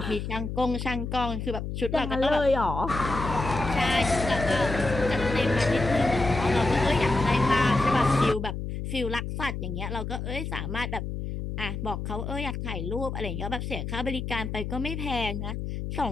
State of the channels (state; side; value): noise; left; hum, 5 dB below the sound